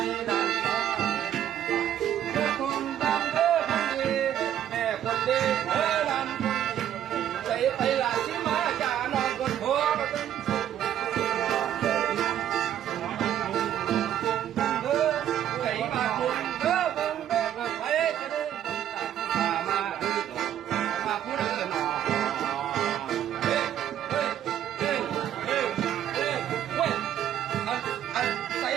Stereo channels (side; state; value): left; quieter; 10.8 dB